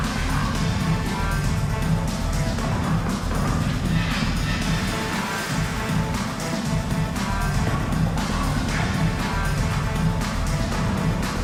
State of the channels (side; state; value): both; identical; correlation 1.00